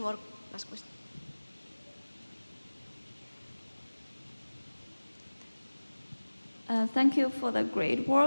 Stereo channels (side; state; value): both; inverted; correlation -1.00